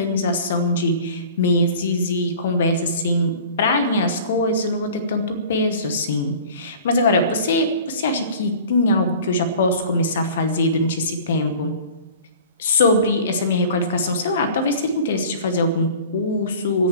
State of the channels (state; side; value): inverted; both; correlation -0.44